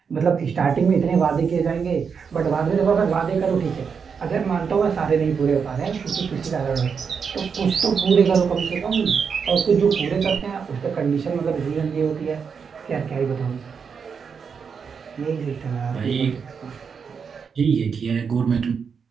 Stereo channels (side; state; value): left; quieter; 6.2 dB